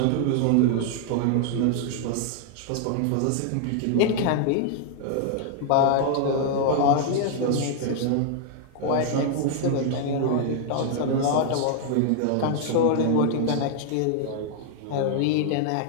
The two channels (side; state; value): both; different; correlation 0.00